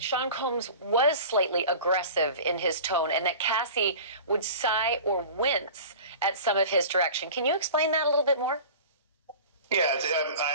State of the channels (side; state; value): both; inverted; correlation -0.38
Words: Sean Combs was slightly aggressive in his tone and that Cassie would sigh or wince at some of his direction. Can you explain that a little bit more? Yeah,